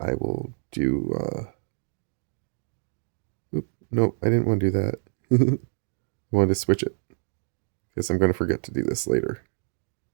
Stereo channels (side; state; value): left; silent; digital silence